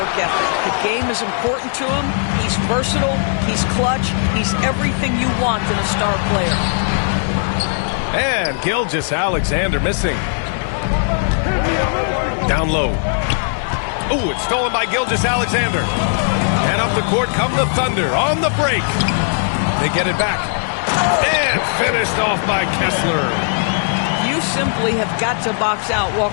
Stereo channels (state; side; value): silent; right; digital silence